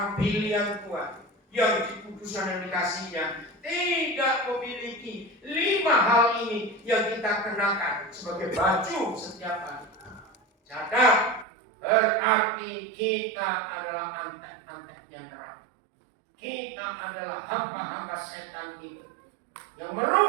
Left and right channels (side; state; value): left; drops out; at 11.5 s